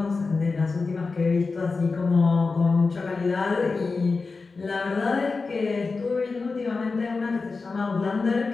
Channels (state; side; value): quieter; right; 4.2 dB